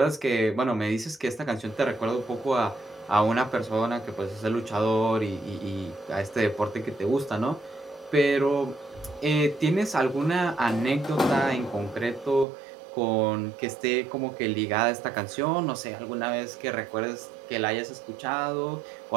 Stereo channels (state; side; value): drops out; left; at 12.5 s